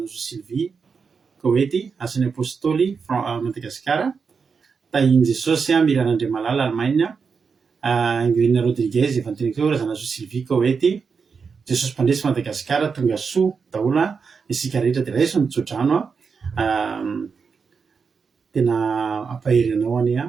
Sylvie Koweït Asany Apostoli Madagasikara Tahin Jesosy Miranandre Malala Allemagne Emilina Rodriguez Evanteniko Razanazo Sylvie Koweït Jesosy Mpandresy Madagasikara tonga soa daholo isika rehetra dia raiso mitsodrano tena ampahery anao any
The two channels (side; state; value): left; quieter; 5.5 dB